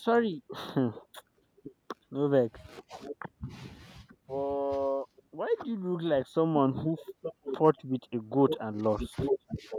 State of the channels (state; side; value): identical; both; correlation 1.00